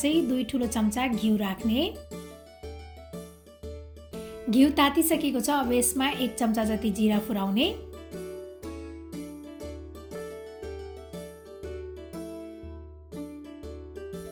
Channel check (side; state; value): both; identical; correlation 1.00